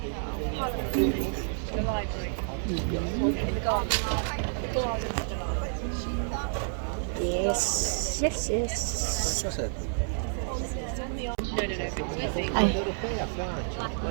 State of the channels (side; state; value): left; silent; digital silence